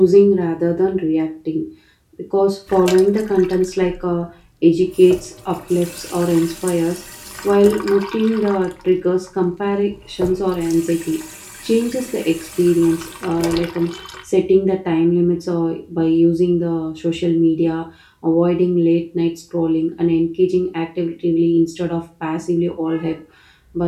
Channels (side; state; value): both; identical; correlation 1.00